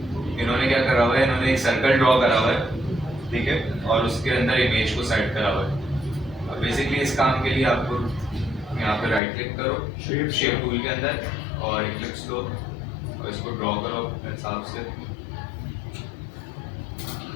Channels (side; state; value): right; drops out; at 9.2 s